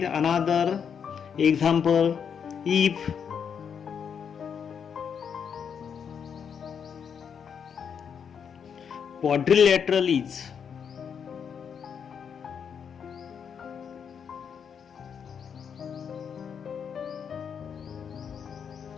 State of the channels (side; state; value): right; quieter; 7.2 dB